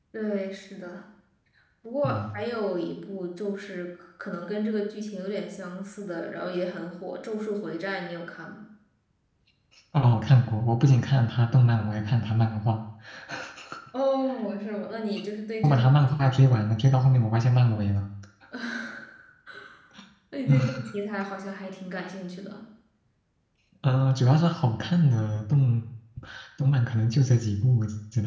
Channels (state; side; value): identical; both; correlation 1.00